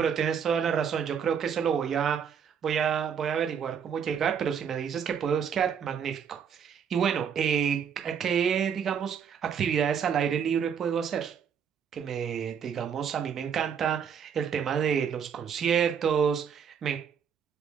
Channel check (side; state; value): left; quieter; 7.5 dB